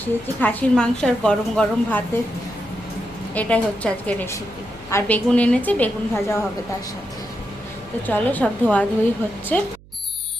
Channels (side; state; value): right; noise; hum, 24 dB below the sound